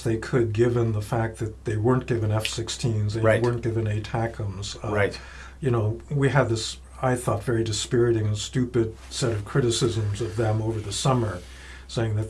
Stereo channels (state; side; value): identical; both; correlation 1.00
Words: they could, given the fact that they weren't given F-16s, they weren't given ATACMS. Right. We had this, I thought, very dispiriting and stupid set of criticisms of them over the summer, saying that